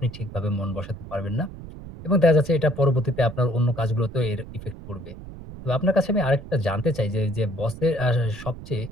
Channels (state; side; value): noise; right; rumble, 14 dB below the sound